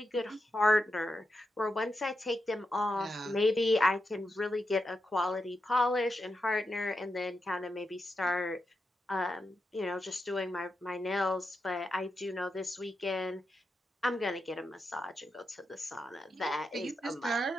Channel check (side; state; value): both; normal; correlation 0.87